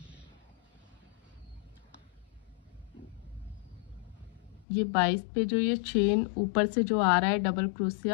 ये 22 पे जो ये चेन ऊपर से जो आ रहा है डबल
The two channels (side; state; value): right; drops out; at 4.7 s